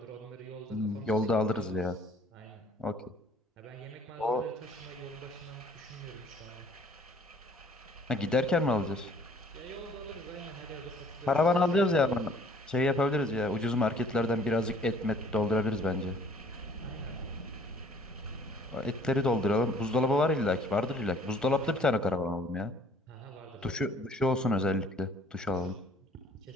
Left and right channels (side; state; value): both; normal; correlation 0.56